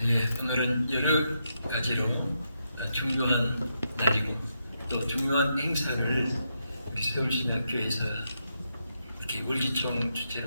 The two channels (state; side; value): inverted; both; correlation -0.82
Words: 네, 오늘은 여러 가지로 중요한 날이고 또 중요한 행사를 우리 서울신학교에서 이렇게 월기총